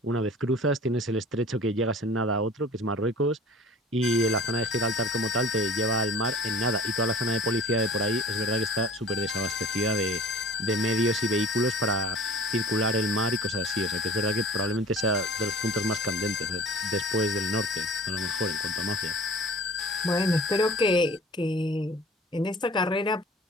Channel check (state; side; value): normal; both; correlation 0.45